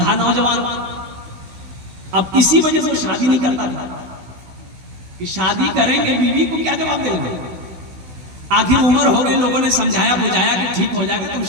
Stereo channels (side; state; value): left; late; 16 ms